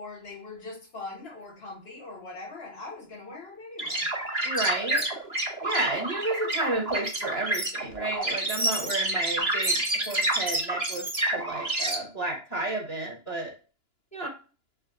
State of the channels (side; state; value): right; late; 2.9 ms